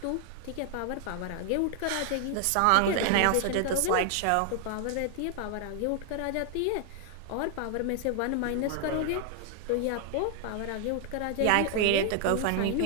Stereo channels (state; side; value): different; both; correlation 0.00